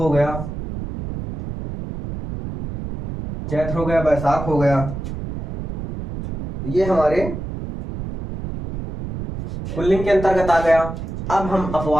गया, चैत्र हो गया, बैसाख हो गया, ये हमारे पुल्लिंग के अंतर्गत आ गया। अब हम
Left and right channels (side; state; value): right; noise; rumble, 7 dB below the sound